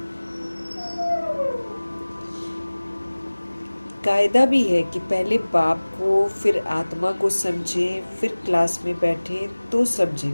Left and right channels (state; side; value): inverted; both; correlation -1.00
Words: कायदा भी है कि पहले बाप को फिर आत्मा को समझें, फिर क्लास में बैठें तो